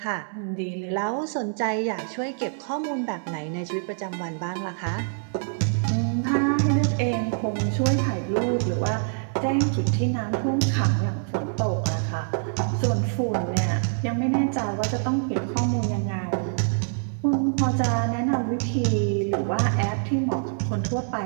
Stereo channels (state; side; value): silent; left; digital silence